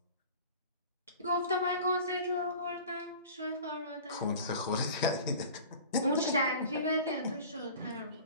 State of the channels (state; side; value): inverted; both; correlation -0.40